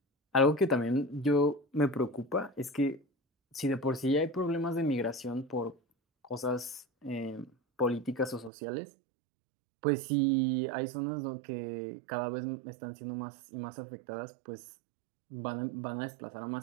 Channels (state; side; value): drops out; left; at 8.5 s